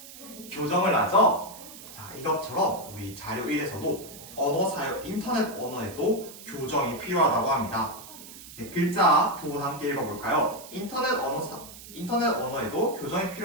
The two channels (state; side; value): noise; right; hiss, 16 dB below the sound